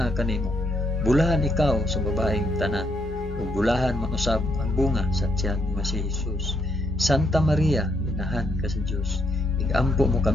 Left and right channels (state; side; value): normal; both; correlation 0.75